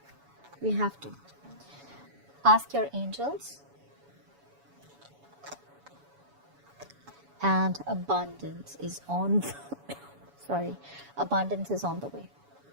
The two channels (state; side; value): late; left; 7.1 ms